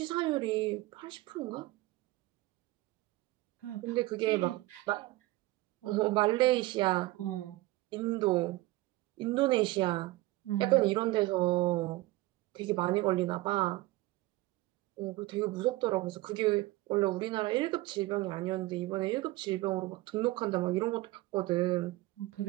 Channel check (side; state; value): left; quieter; 19.0 dB